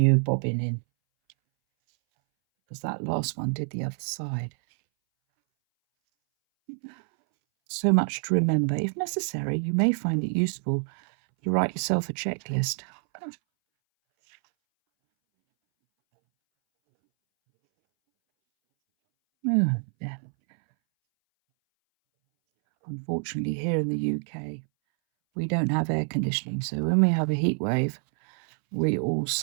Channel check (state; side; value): silent; left; 60 dB below the other